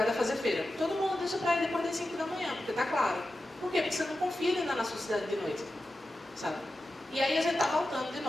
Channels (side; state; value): both; normal; correlation 0.92